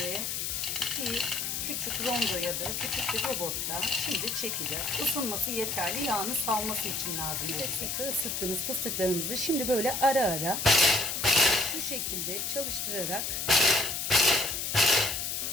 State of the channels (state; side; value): noise; left; hiss, 2 dB below the sound